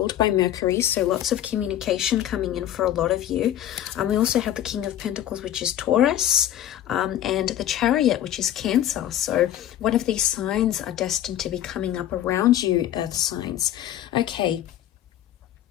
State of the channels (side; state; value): right; quieter; 11.9 dB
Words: by Mercury, so lots of communication coming in for a lot of you. We also have the King of Pentacles, which is Taurus, and the Chariot, which is Cancer. So one of these signs are destined to be coming up around you, Earth signs. Okay,